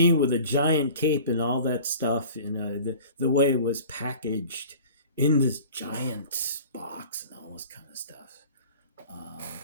with a giant cape and all that stuff, the way it was packaged in this giant box and all this kind of stuff.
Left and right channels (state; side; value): inverted; both; correlation -0.43